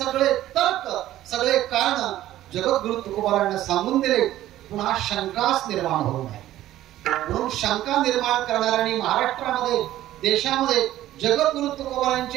तर्क, सगळे कारण जगद्गुरु तुकोबरायांना सांगून दिले. पुन्हा शंकाच निर्माण होऊ नये म्हणून शंका निर्माण करणाऱ्यांनी महाराष्ट्रामध्ये, देशामध्ये जगद्गुरु तुकोबरायांचे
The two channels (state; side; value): quieter; left; 13.9 dB